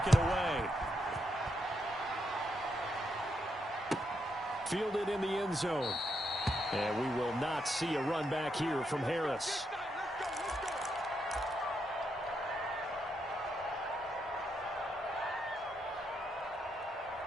it away. Fielded in the end zone. And we will not see a run back here from Harris.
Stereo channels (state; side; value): normal; both; correlation 0.80